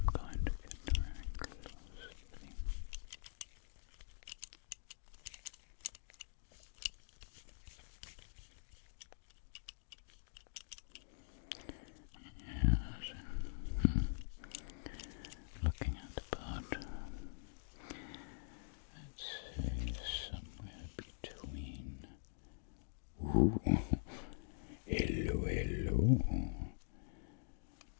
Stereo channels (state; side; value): silent; right; digital silence